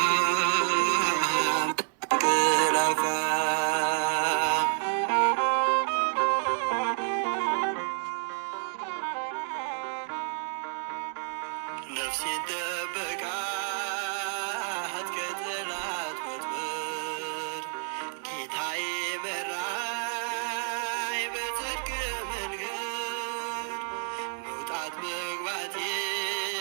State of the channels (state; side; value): silent; left; 58 dB below the other